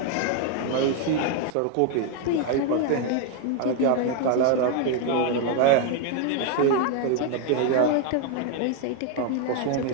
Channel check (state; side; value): different; both; correlation 0.01